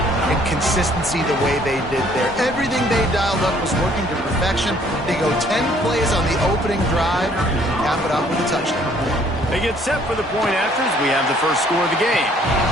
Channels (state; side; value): normal; both; correlation 0.61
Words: and consistency the way they did there. Everything they dialed up was working to perfection. They go 10 plays on the opening drive, cap it off with a touchdown. They get set for the point afters. We have the first score of the game.